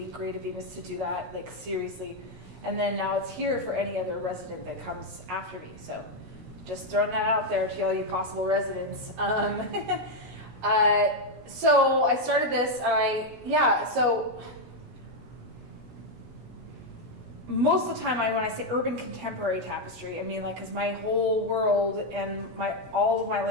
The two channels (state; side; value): late; left; 16 ms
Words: great of Bemis to do that, seriously. And then now it's here for any other resident that comes after me. So just throwing that out there to all you possible residents. So I started this, and so most of the time when I say urban contemporary tapestry, because my whole world and all of my